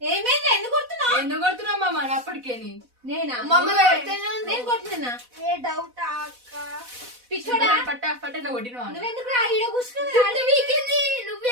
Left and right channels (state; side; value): late; left; 4.1 ms